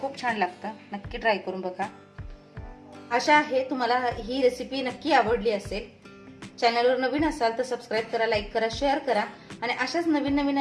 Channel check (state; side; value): identical; both; correlation 1.00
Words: छान लागतं, नक्की ट्राय करून बघा. आशा आहे तुम्हाला ही रेसिपी नक्की आवडली असेल. चॅनलवर नवीन असाल तर सबस्क्राईब करा, लाईक करा, शेअर करा आणि अशाच नवीन नवीन